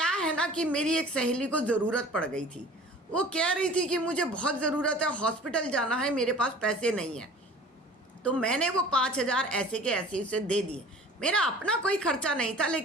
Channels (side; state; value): both; normal; correlation 0.46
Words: है ना कि मेरी एक सहेली को ज़रूरत पड़ गई थी, वो कह रही थी कि मुझे बहुत ज़रूरत है, हॉस्पिटल जाना है, मेरे पास पैसे नहीं है, तो मैंने वो 5,000 ऐसे के ऐसे उसे दे दिए। मेरा अपना कोई खर्चा नहीं था,